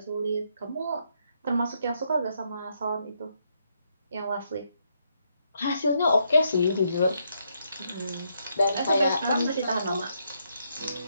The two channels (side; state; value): both; inverted; correlation -0.76